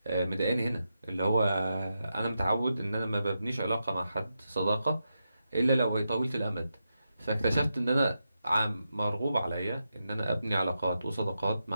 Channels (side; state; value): both; inverted; correlation -0.87